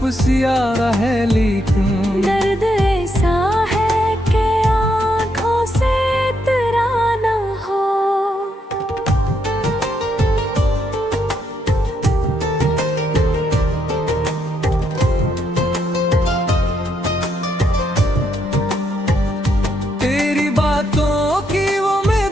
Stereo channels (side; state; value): both; normal; correlation 0.76